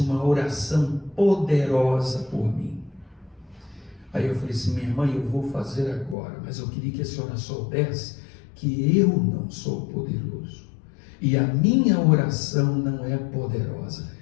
oração poderosa por mim. Aí eu falei assim: minha irmã, eu vou fazer agora, mas eu queria que a senhora soubesse que eu não sou poderoso e a minha oração não é poderosa.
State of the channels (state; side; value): drops out; right; at 6.2 s